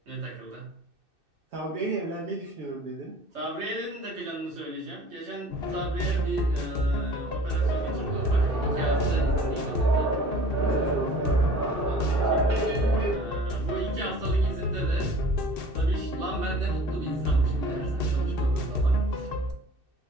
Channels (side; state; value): left; late; 2.6 ms